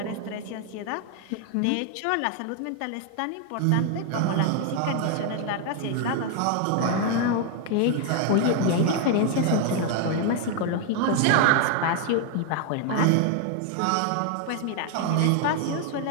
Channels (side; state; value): both; different; correlation 0.00